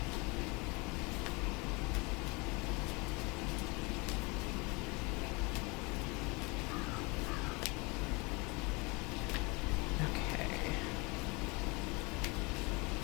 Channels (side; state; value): right; quieter; 27.5 dB